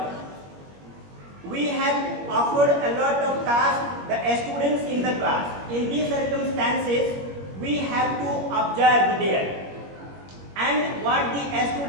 We have offered a lot of tasks the students in the class. In these circumstances, we have to observe there. And what the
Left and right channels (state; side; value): late; left; 21 ms